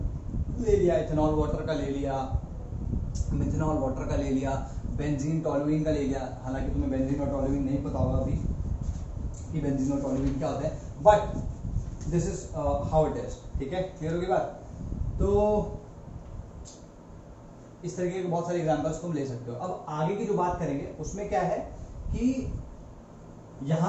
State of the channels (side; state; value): both; identical; correlation 1.00